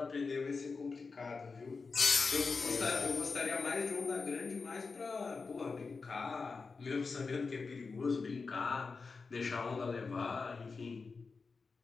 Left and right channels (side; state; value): right; quieter; 4.5 dB